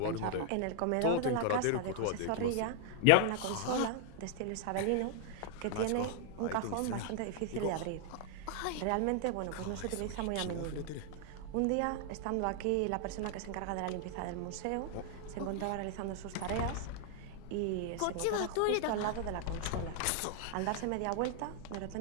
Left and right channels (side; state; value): both; different; correlation 0.00